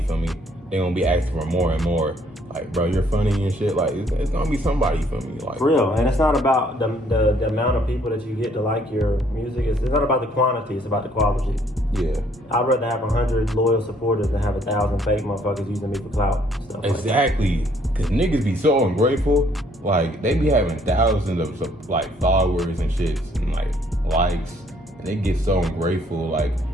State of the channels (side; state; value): both; normal; correlation 0.65